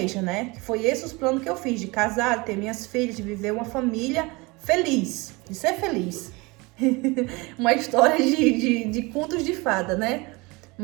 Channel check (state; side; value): quieter; left; 25.0 dB